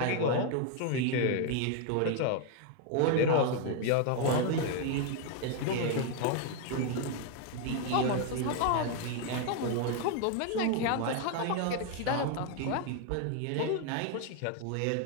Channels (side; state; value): both; different; correlation 0.00